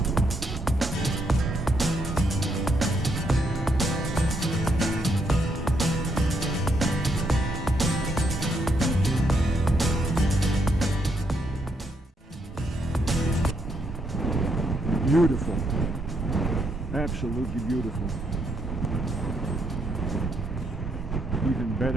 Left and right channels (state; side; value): normal; both; correlation 0.76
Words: Beautiful, absolutely beautiful. Even